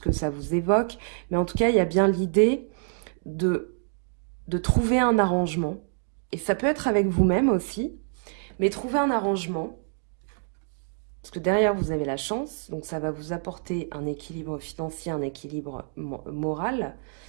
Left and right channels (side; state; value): left; silent; digital silence